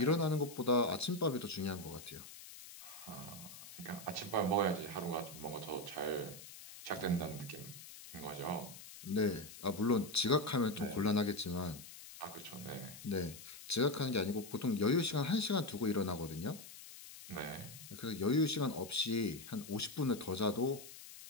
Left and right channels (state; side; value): noise; left; hiss, 15 dB below the sound